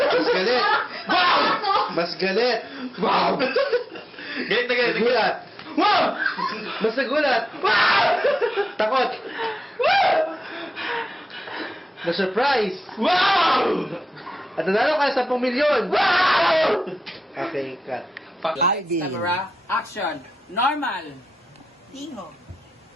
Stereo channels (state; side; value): normal; both; correlation 0.93